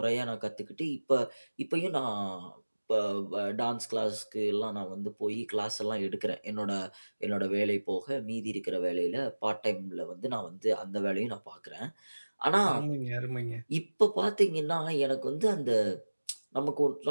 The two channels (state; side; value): inverted; both; correlation -1.00